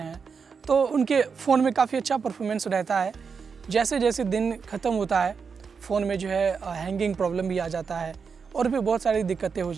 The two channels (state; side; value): quieter; left; 5.7 dB